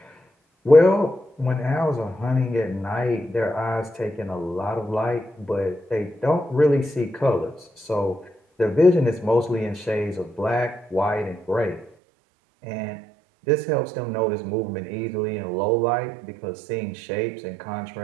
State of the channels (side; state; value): left; drops out; at 11.9 s